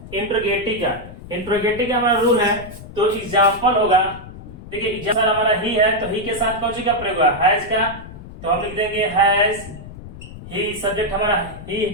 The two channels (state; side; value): noise; left; rumble, 14 dB below the sound